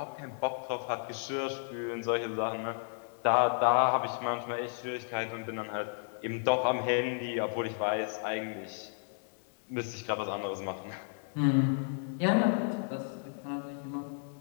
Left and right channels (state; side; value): silent; right; digital silence